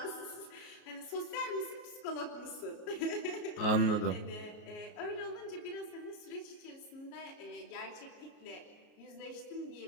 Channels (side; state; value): right; late; 33 ms